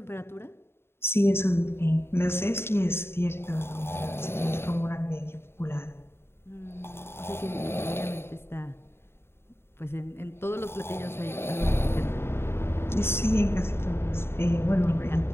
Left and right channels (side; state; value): right; late; 0.12 ms